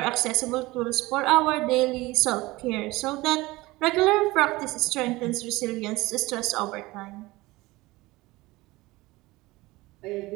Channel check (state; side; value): quieter; left; 20.4 dB